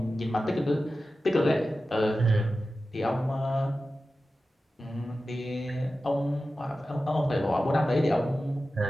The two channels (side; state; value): both; normal; correlation 0.94